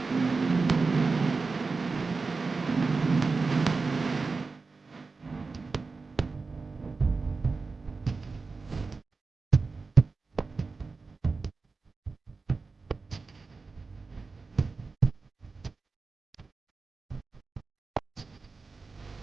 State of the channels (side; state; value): left; quieter; 4.2 dB